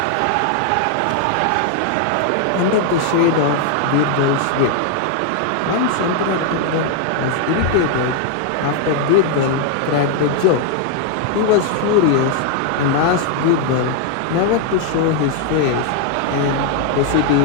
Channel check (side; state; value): both; different; correlation 0.00